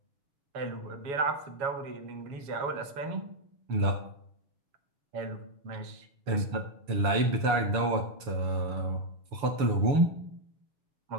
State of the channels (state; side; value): late; left; 6.9 ms